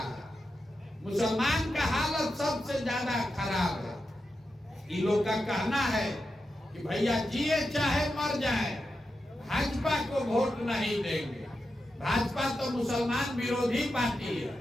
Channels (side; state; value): both; normal; correlation 0.89